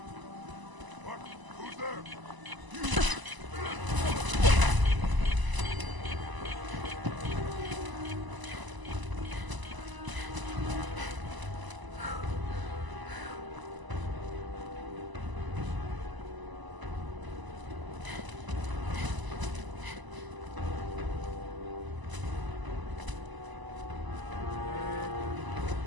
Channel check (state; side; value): late; left; 1.0 ms